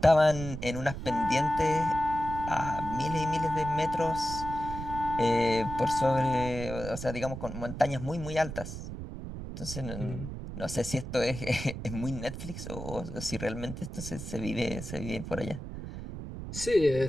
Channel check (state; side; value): noise; right; rumble, 8 dB below the sound